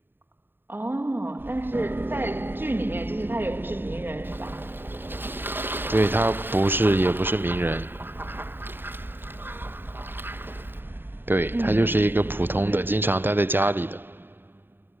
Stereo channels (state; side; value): late; left; 0.097 ms